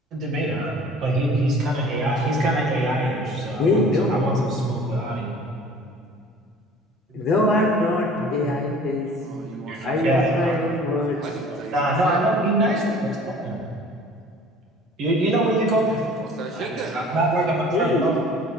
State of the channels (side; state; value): both; normal; correlation 0.48